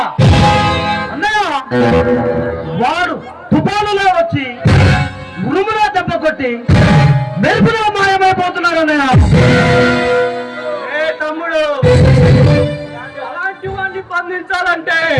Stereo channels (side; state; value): both; identical; correlation 1.00